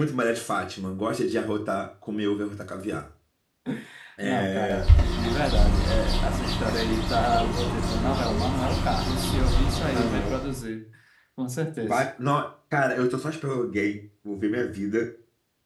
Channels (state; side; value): identical; both; correlation 1.00